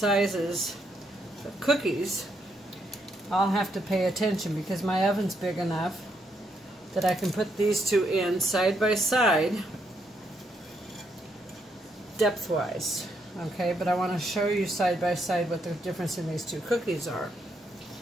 of cookies, I'll have to pay attention because my oven's big enough that I can put these 2 in side by side, depth-wise. Okay, but I want to show you side by side what the difference in these 2 cookies are.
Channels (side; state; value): both; normal; correlation 0.77